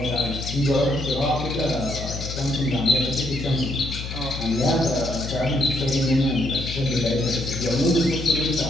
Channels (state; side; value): noise; left; hum, 7 dB below the sound